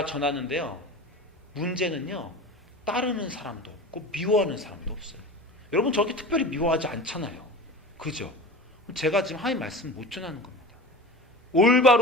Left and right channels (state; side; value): normal; both; correlation 0.33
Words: 전하는데요 문제는요 따르는 사람도 없고 미워하는 사람도 없어요. 여러분 저렇게 특별히 미워하지 않잖아요. 그죠? 제가 지금 하나님 말씀 못 전하는 겁니다.